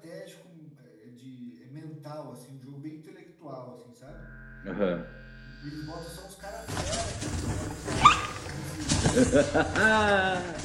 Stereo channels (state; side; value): identical; both; correlation 1.00